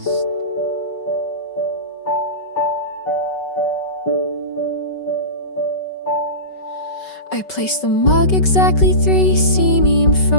I placed the mug exactly 3 cm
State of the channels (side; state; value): right; late; 5.3 ms